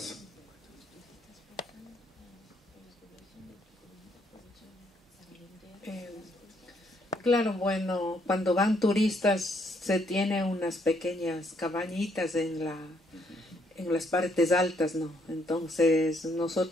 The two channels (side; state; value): both; normal; correlation 0.71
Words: Claro, bueno, cuando van turistas se tiene unas pequeñas cabañitas en las partes altas, ¿no? Entonces